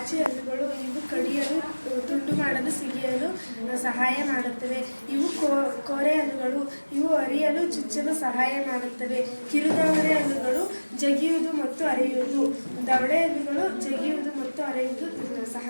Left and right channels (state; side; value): inverted; both; correlation -1.00